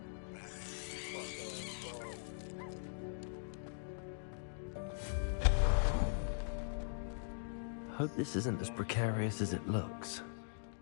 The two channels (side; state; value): right; silent; digital silence